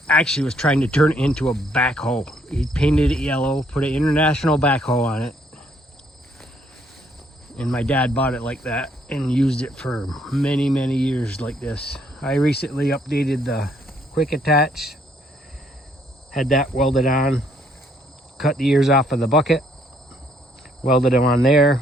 actually was trying to turn it into a backhoe. He painted it yellow, put an international backhoe on it. And my dad bought it like that and used it for many, many years like this. I recently updated the quick attach, had that welded on, cut the ears off of the bucket, welded them on there,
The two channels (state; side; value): normal; both; correlation 0.68